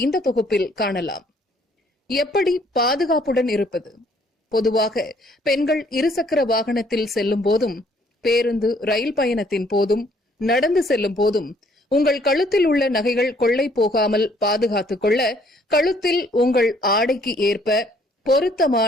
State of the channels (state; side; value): normal; both; correlation 0.63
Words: இந்த தொகுப்பில் காணலாம். எப்படி பாதுகாப்புடன் இருப்பது? பொதுவாக பெண்கள் இருசக்கர வாகனத்தில் செல்லும் போதும், பேருந்து ரயில் பயணத்தின் போதும், நடந்து செல்லும் போதும் உங்கள் கழுத்தில் உள்ள நகைகள் கொள்ளை போகாமல் பாதுகாத்துக் கொள்ள கழுத்தில் உங்கள் ஆடைக்கு ஏற்ப